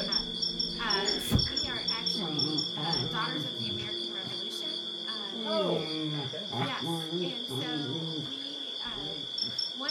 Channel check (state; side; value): identical; both; correlation 1.00